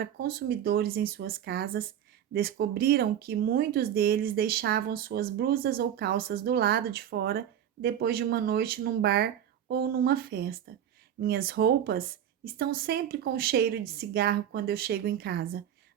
consumidores em suas casas, descobriram que muitos deles deixavam suas blusas ou calças do lado de fora depois de uma noite num bar ou numa festa. Minhas roupas estão sempre com cheiro de cigarro quando eu chego em casa,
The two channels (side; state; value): left; quieter; 10.0 dB